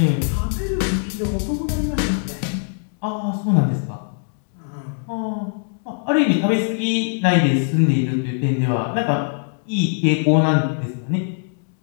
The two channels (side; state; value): right; silent; digital silence